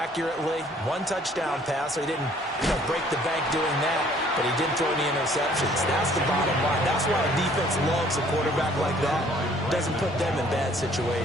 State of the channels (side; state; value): both; normal; correlation 0.58